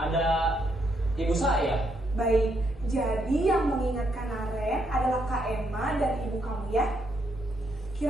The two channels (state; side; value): normal; both; correlation 0.76